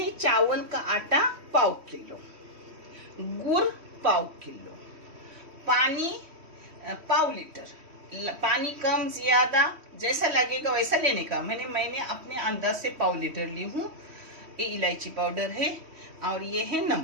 चावल का आटा पाव किलो, गुड़ पाव किलो, पानी पाव लीटर। पानी कम ज्यादा जैसा लगेगा वैसा लेने का। मैंने अपने अंदाज से पाव लीटर ली हूँ। ये इलायची पाउडर है और ये है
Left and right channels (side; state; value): left; late; 3.1 ms